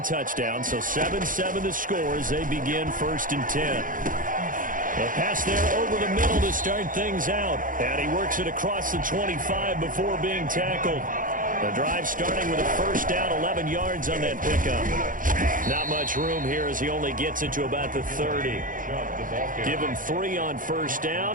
touchdown, so 7-7 the score as they begin 1st and 10. A pass there over the middle to start things out, and he works it across the 25 before being tackled. The drive starting with a 1st down, 11 yards on that pickup. Not much room here as he only gets it to about the 30. Give him 3 on 1st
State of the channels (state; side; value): late; left; 0.39 ms